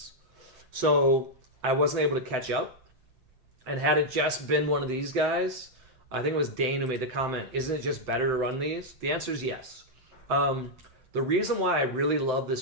So I wasn't able to catch up. And had it just been one of these guys, I think it was Dane who made the comment, isn't it just better to run these? The answer is yes. The reason why I really love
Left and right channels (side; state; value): left; late; 7.8 ms